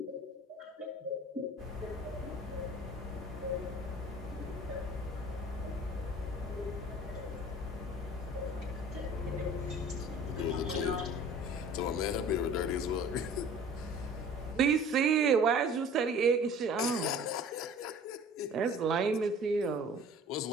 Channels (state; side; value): normal; both; correlation 0.46